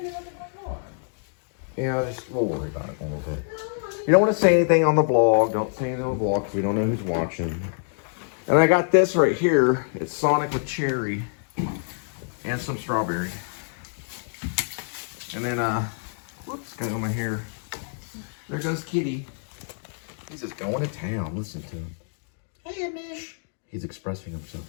Yeah, we'll worry about it a little bit. You don't want to say anything on the vlog. Don't say anything on the vlog because we don't know who's watching. And I got this right here. It's Sonic with cherry and some strawberry. And then, whoops, got it on my hair. There goes Kitty. He's just going to town. Listen to him. Hey, Edmund. He's expressing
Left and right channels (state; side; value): silent; right; digital silence